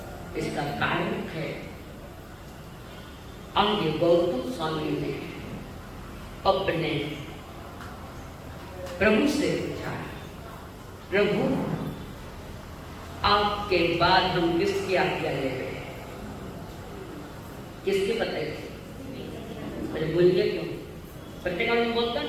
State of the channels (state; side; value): identical; both; correlation 1.00